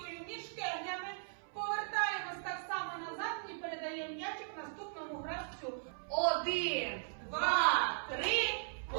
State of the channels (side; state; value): left; silent; 52 dB below the other